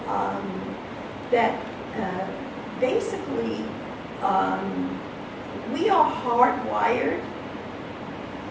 That basically we are hardwired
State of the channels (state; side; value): identical; both; correlation 1.00